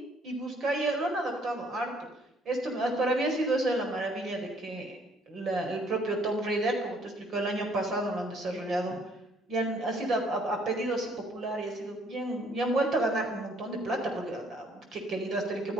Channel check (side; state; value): both; normal; correlation 0.63